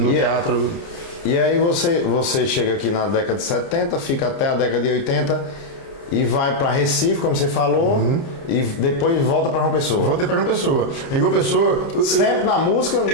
teatro. E aí você chega aqui na década de 70, fica até a década de 80 e vai para Recife, como você falou, e depois volta para João Pessoa. Voltei para João Pessoa. Em João Pessoa, sempre na música.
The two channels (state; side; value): late; right; 29 ms